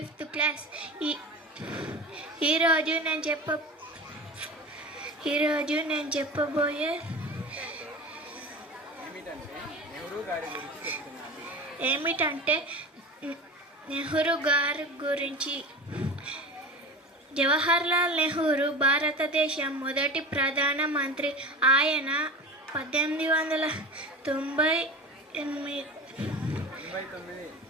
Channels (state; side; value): normal; both; correlation 0.32